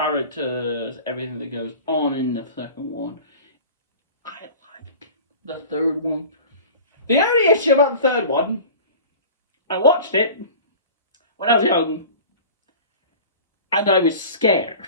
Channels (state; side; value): inverted; both; correlation -0.39